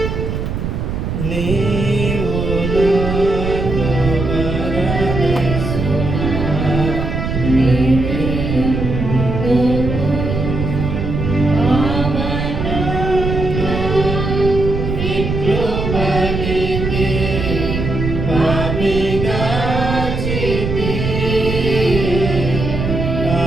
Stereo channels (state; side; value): noise; right; rumble, 3 dB below the sound